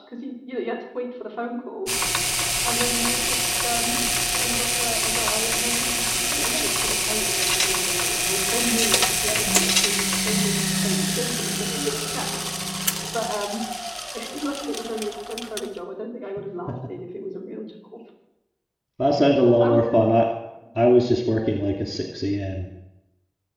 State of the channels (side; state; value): both; identical; correlation 1.00